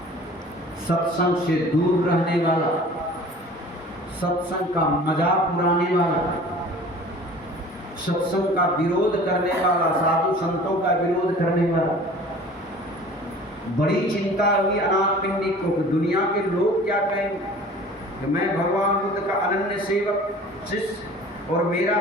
सत्संग से दूर रहने वाला, सत्संग का मजाक उड़ाने वाला, सत्संग का विरोध करने वाला, साधु संतों का विरोध करने वाला। बड़ी चिंता हुई अनाथ पिंडी को कि दुनिया के लोग क्या कहेंगे कि मैं भगवान बुद्ध का अनन्य सेवक शिष्य और मेरा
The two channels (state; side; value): normal; both; correlation 0.45